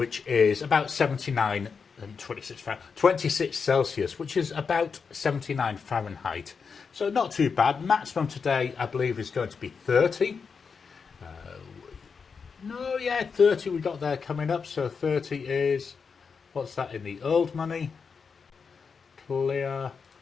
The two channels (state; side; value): quieter; right; 5.6 dB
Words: is about 79 and 26 Celsius, which is about 79 Fahrenheit. So not too bad. Maximum today, I believe, is going to be 30. 30 we got there coming up. So 30 is, what's that in the old money? Clear